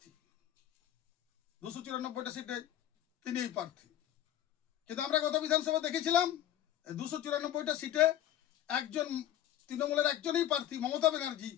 294টা সিটে তিনিই প্রার্থী। কিন্তু আমরা গত বিধানসভা দেখেছিলাম 294টা সিটে একজন তৃণমূলের একজনই প্রার্থী, মমতা ব্যানার্জি,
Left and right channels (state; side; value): quieter; right; 11.8 dB